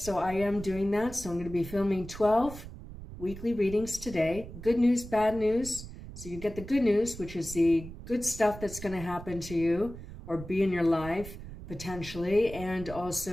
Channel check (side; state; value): right; noise; rumble, 13 dB below the sound